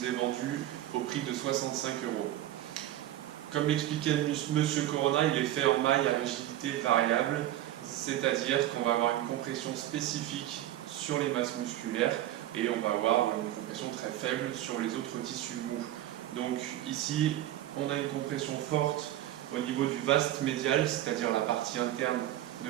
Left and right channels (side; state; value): left; quieter; 13.6 dB